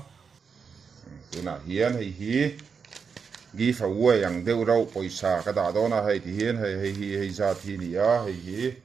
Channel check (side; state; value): left; quieter; 5.9 dB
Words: tuna hian hi gi fa uai ang deuh rau poisa ka da dona hei ti hian hei za thi ni a hi